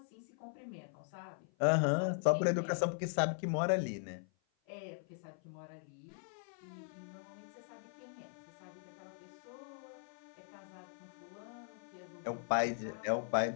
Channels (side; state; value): right; silent; 51 dB below the other